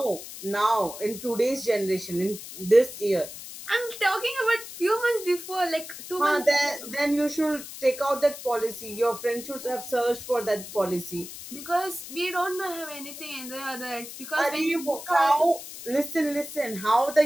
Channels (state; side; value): noise; left; hiss, 12 dB below the sound